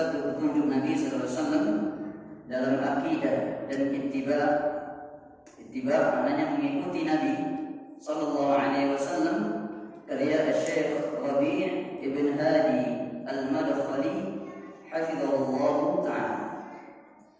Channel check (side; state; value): both; identical; correlation 1.00